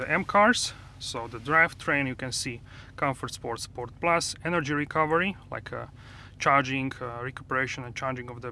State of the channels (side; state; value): both; identical; correlation 1.00